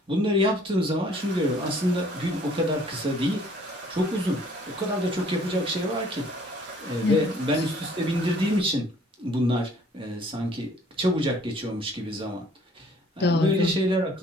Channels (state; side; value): normal; both; correlation 0.58